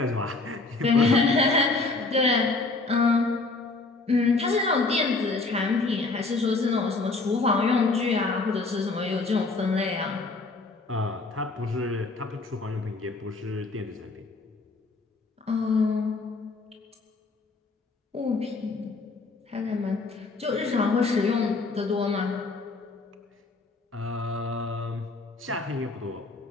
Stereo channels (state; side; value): quieter; right; 3.6 dB